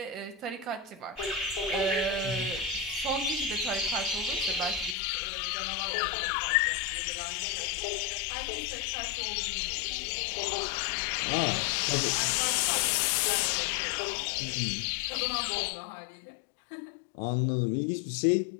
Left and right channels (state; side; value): drops out; right; at 5.0 s